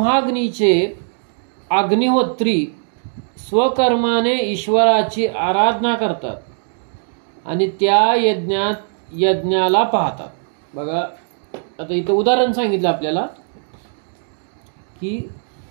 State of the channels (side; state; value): left; silent; digital silence